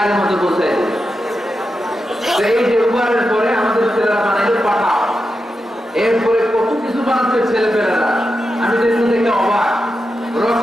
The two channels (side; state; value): both; normal; correlation 0.89